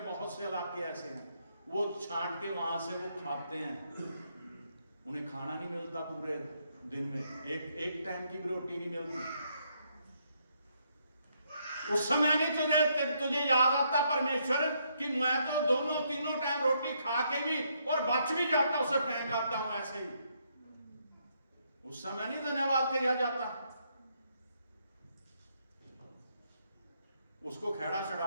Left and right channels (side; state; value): both; inverted; correlation -0.74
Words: बहुत से इलाके ऐसे हैं, वो छांट के वहां से वो खाते हैं, उन्हें खाना नहीं मिलता पूरे दिन में, एक टाइम की भी रोटी नहीं मिलती। उस समय नहीं तुझे याद आता परमेश्वर कि मैं तो दोनों तीनों टाइम रोटी खा के भी और बच भी जाता, उसे फेंक आता हूं ऐसे ही। उस समय नहीं धन्यवाद किया जाता। उसको खेड़ा